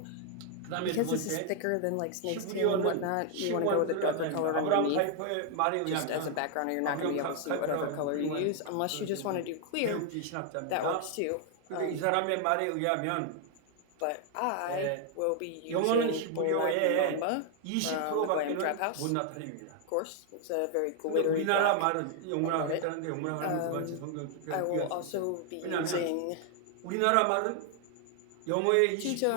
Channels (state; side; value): different; both; correlation 0.00